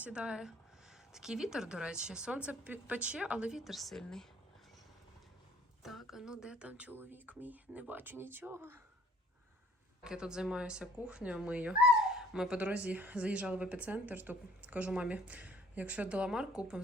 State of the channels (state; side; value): normal; both; correlation 0.56